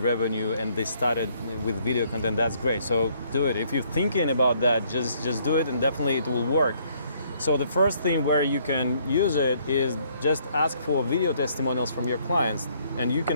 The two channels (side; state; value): both; inverted; correlation -0.67